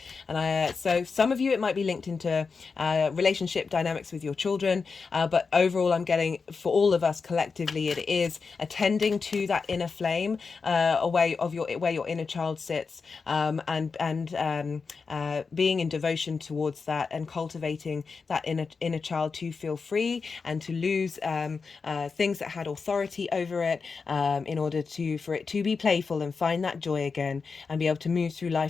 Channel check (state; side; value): quieter; right; 4.9 dB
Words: And so some of you, it might be linked into relationship dynamics with your children, but overall I'm getting, for all of us collectively, it is attending to that inner flame, where your inner child sits, and being in devotion towards that, and cultivating that inner child to feel free and to lose things that had authority over it, in order for it to be playful and find that joy again, and be able to move through